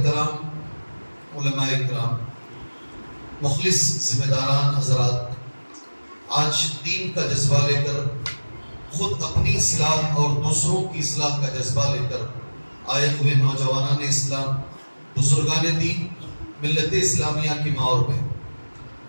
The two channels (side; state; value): both; inverted; correlation -1.00